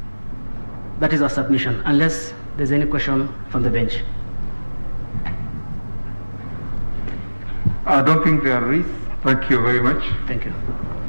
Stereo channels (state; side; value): inverted; both; correlation -1.00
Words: That is our submission, unless there's any question from the bench. I don't think there is. Thank you very much. Thank you.